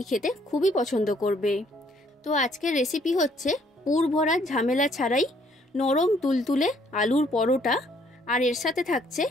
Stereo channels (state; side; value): normal; both; correlation 0.65